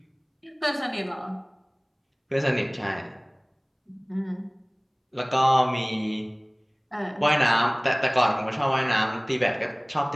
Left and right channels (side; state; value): both; identical; correlation 1.00